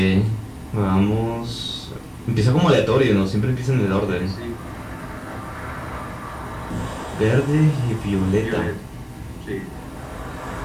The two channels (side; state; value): both; identical; correlation 1.00